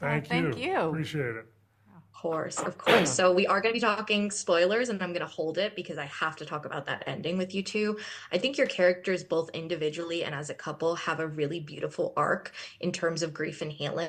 Thank you. you. Appreciate it. Of course, of course. So we are going to be talking spoilers, and I'm going to hold it because I have to talk about that ending with you two. I think your characters, both individually and as a couple, have a really beautiful arc in terms of grief and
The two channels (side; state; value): both; identical; correlation 1.00